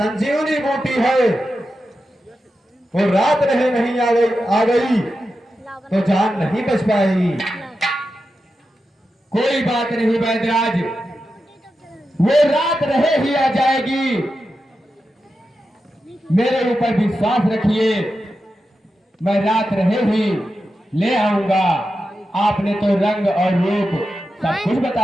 बूटी है वो रात रहे नहीं आ गई तो जान नहीं बच पाएगी। कोई बात नहीं वैद्यराज, वो रात रहे ही आ जाएगी। मेरे ऊपर विश्वास रखिए, मैं रात रहे ही ले आऊंगा। आपने तो रंग और रूप सब कुछ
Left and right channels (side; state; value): both; normal; correlation 0.90